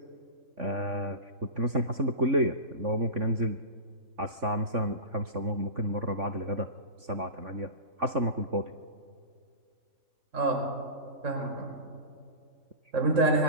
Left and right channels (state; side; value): late; left; 3.5 ms